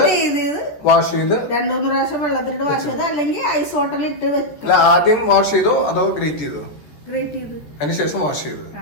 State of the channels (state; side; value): late; right; 14 ms